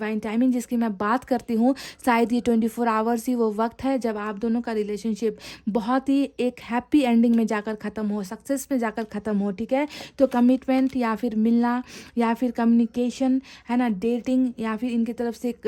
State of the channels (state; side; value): identical; both; correlation 1.00